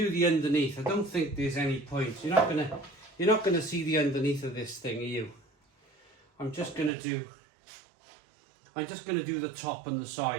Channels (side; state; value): left; drops out; at 6.9 s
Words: the underneath. I don't think there's any point. You're not going to see the underneath of this thing, are you? I'm just going to do the top and the